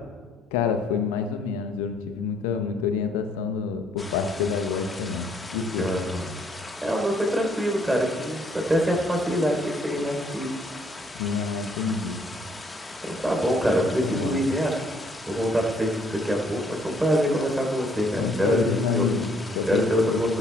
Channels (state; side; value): normal; both; correlation 0.66